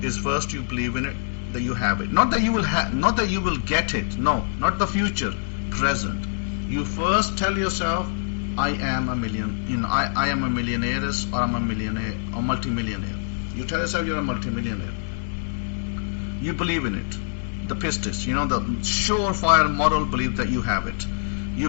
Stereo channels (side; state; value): right; silent; digital silence